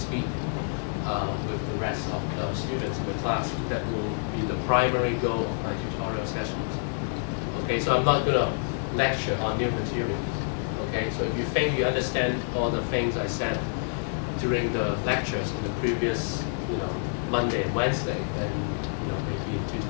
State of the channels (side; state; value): right; silent; digital silence